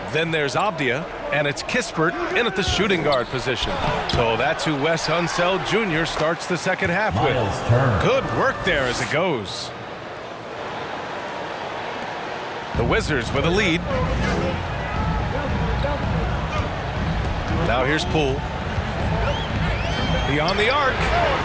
Then there's Avdia. And it's Kispert in at the shooting guard position. So that's who Wes Unseld Jr. starts the second half with. Good work there as it goes. The Wizards with a lead. Now here's Poole. Beyond the arc.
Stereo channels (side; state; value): both; identical; correlation 1.00